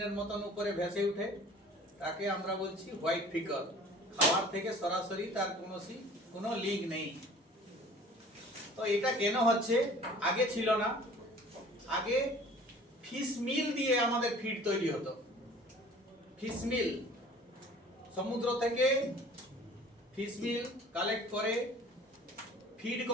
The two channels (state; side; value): normal; both; correlation 0.48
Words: মতন উপরে ভেসে উঠে, তাকে আমরা বলছি হোয়াইট ফিকল। খাবার থেকে সরাসরি তার কোনো লিঙ্ক নেই। তো এটা কেন হচ্ছে? আগে ছিল না। আগে ফিশ মিল দিয়ে আমাদের ফিড তৈরি হতো। ফিশ মিল, সমুদ্র থেকে ফিশ মিল কালেক্ট করে ফিড